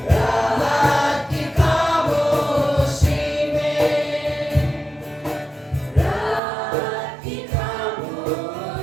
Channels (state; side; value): drops out; left; at 6.4 s